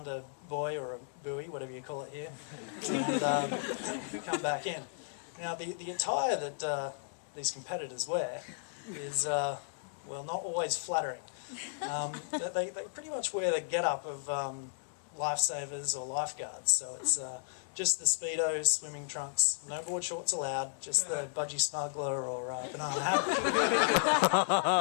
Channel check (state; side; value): silent; right; digital silence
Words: a buoy or a buoy, whatever you call it here, and come back in. Now, the attire that these competitors wear is, well, not always flattering. They pretty much wear the get-up of lifesavers or lifeguards. So it's just the Speedos, swimming trunks, no board shorts allowed, just the budgie smuggler or banana hammock.